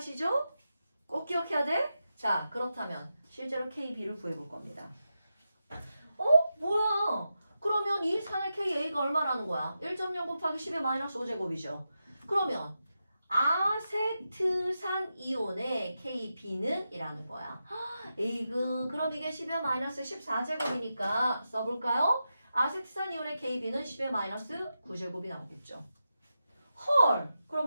꼭 기억해야 돼? 자, 그렇다면 실제로 KB를 구해볼 겁니다. 뭐야? 그러면 이 산의 KA가 얼마라는 거야? 1.0 곱하기 10의 마이너스 5제곱이죠. 그러면 아세트산 이온의 KB는 이라는 거야. 에이그, 그럼 이게 10의 마이너스 14제곱이니까 써볼까요? 아세트산 이온의 KB는 10의 마이너스 9제곱이 나오겠죠. 헐!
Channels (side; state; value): both; inverted; correlation -0.89